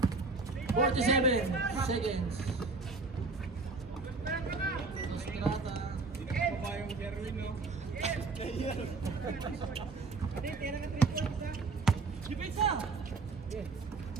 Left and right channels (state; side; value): quieter; left; 3.9 dB